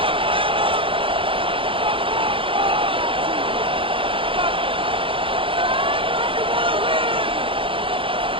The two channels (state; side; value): late; left; 0.25 ms